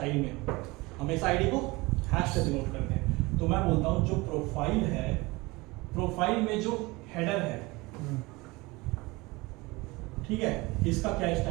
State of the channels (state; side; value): quieter; left; 23.1 dB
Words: में, हमेशा आईडी को हैश से डिनोट करते हैं, तो मैं बोलता हूँ जो प्रोफाइल है, प्रोफाइल में जो हेडर है, ठीक है, इसका क्या